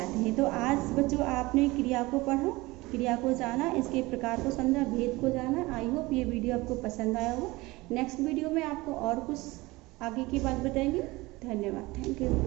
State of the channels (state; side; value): quieter; left; 21.4 dB